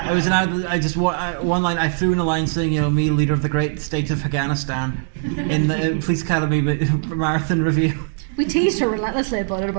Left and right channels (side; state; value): left; silent; digital silence